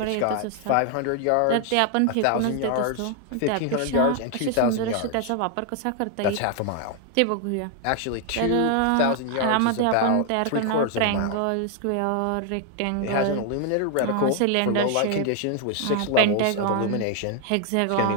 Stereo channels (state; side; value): different; both; correlation 0.00